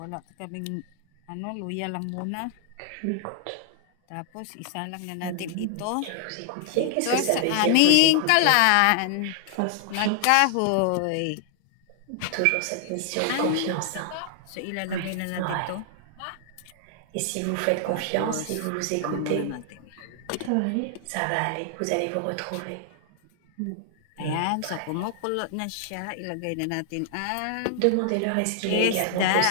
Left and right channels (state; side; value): different; both; correlation 0.00